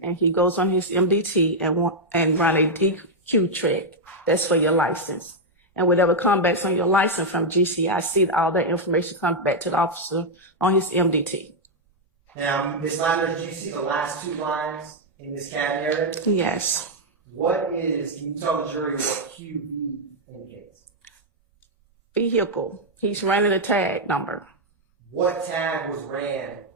and he goes on his MDT and run a DQ check. That's for your license. And whatever comes back on your license from GCIC, all that information comes back to the officer on his MDT. Now, Ms. Lander, do you see the last two lines in this CAD narrative? Yes. Can you tell the jury what QB indicates? Vehicle. He's running a tag number. What tag was ran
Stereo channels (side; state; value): both; normal; correlation -0.02